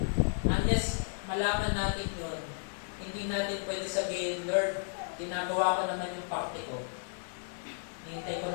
Unless malaman natin yun, hindi natin pwede sabihin, Lord, ginagawa ko naman yung parte ko. Hintay ko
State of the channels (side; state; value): right; silent; 56 dB below the other